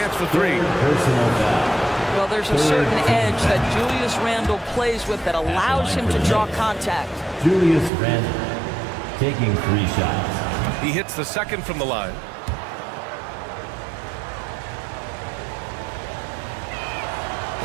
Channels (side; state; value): left; drops out; at 7.9 s